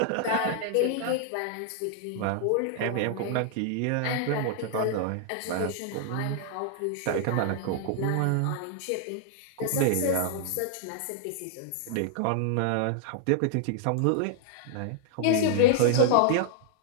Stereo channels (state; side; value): different; both; correlation -0.01